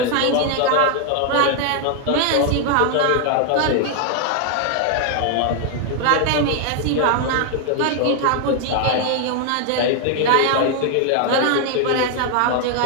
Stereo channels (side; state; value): both; different; correlation 0.00